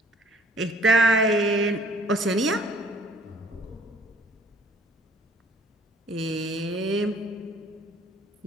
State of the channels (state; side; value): normal; both; correlation 0.55